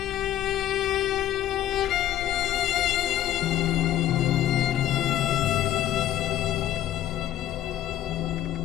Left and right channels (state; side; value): quieter; right; 12.4 dB